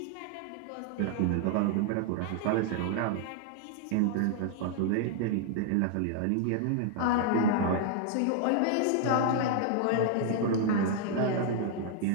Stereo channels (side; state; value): both; different; correlation 0.00